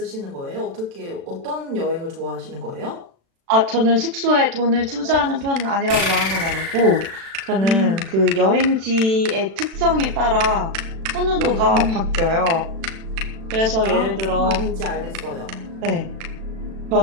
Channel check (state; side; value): late; left; 36 ms